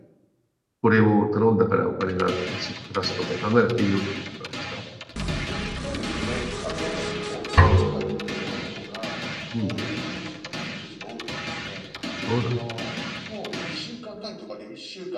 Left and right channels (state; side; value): identical; both; correlation 1.00